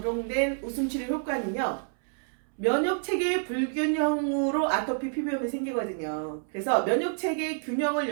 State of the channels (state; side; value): silent; left; 59 dB below the other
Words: 웃음치료 효과는요. 면역체계의 불균형으로 아토피 피부염이 생기거든요. 그래서 면역체계의 균형을